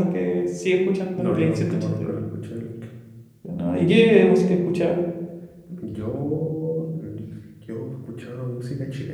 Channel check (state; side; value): identical; both; correlation 1.00